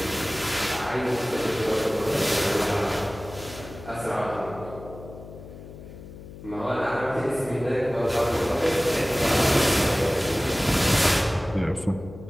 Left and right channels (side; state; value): left; noise; hum, 15 dB below the sound